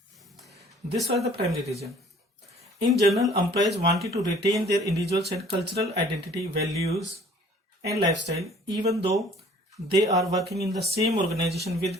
was the primary reason. In general, employees wanted to retain their individual and cultural identity, values, and lifestyle, even though they are working in the same organization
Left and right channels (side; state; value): both; normal; correlation 0.54